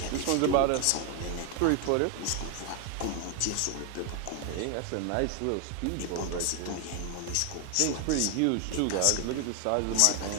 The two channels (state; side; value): different; both; correlation 0.01